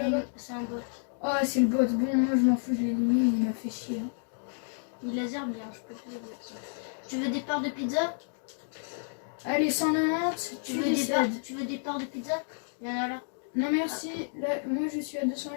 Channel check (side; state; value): right; silent; digital silence